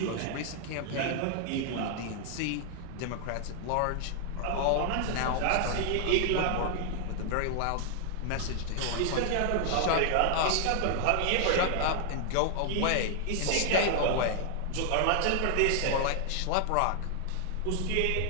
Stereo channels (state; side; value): different; both; correlation 0.00